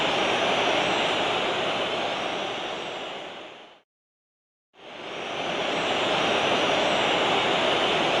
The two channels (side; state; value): both; identical; correlation 1.00